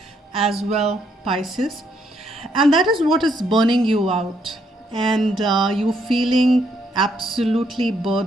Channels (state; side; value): normal; both; correlation 0.73